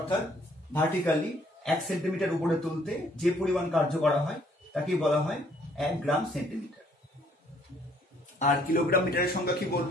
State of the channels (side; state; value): both; normal; correlation 0.63